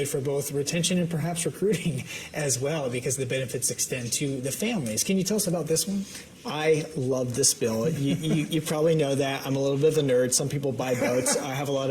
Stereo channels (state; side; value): identical; both; correlation 1.00